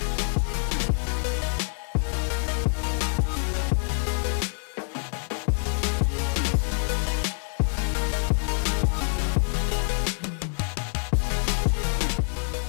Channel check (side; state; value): right; silent; 61 dB below the other